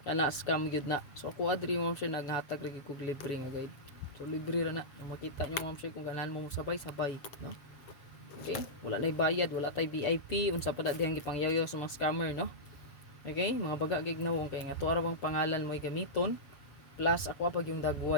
Kana scam gyud na. So ako adri ma'am sir naghatag lagi kog libre nga guide. So libre ra na. Makita nyo ma'am sir kung ganahan mo sabay-sabay no. Okay? Wala nay bayad, wala tay VIP, unsa pa dihang gipangyayo sa mga scammer no. Okay? Mga baga gignawong kay nga tuwa ra bang pangalan mo gamiton plus ako pag yung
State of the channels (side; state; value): right; late; 7.1 ms